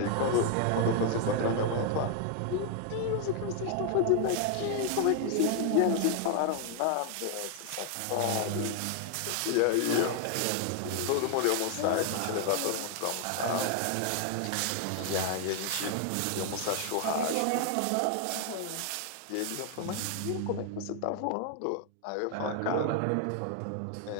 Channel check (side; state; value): both; different; correlation 0.00